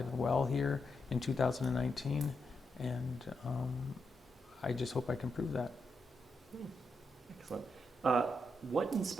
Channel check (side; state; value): both; normal; correlation 0.84